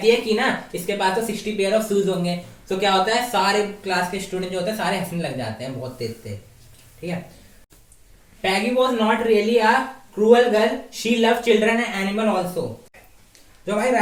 है कि ना इसके पास तो 60 पेयर ऑफ शूज होंगे। तो क्या होता है, सारे क्लास के स्टूडेंट जो होते हैं सारे हंसने लग जाते हैं बहुत तेज तेज, ठीक है। Peggy was not really a cruel girl, she love children and animal also. जो हमारी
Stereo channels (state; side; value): identical; both; correlation 1.00